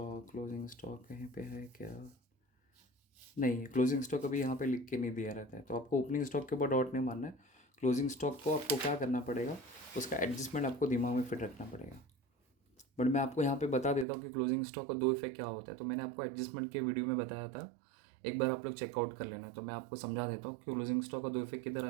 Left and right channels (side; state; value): left; drops out; at 14.1 s